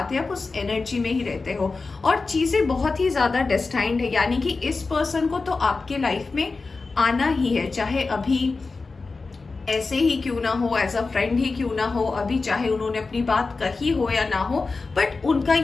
आप उस एनर्जी में ही रहते हो, और चीजें बहुत ही ज्यादा डेस्टाइंड है। यानी कि इस पर्सन को तो आपके लाइफ में आना ही है, चाहे अभी ऐसे ही क्यों ना हो, एज अ फ्रेंड ही क्यों ना हो, अभी चाहे उन्होंने अपनी बात कही हो या ना हो, बट उनका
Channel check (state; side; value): quieter; right; 4.0 dB